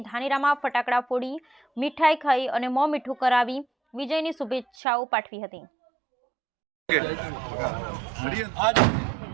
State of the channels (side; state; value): left; drops out; at 4.7 s